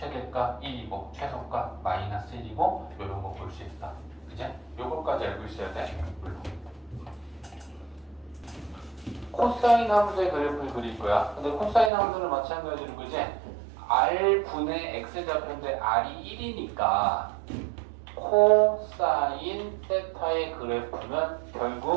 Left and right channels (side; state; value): left; drops out; at 11.9 s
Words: 1이고 최소값 마이너스 1이고 이런 거 볼 수 있다. 그치? 요거까지 알고 있어야 돼. 물론. 코사인 함수의 그래프를 그릴 거야. 근데 코사인 함수는 마찬가지로 그지? r분의 x좌표인데 r이 1이니까 코사인 세타의 그래프는